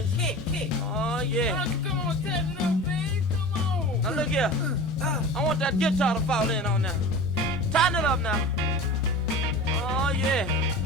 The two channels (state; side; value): normal; both; correlation 0.34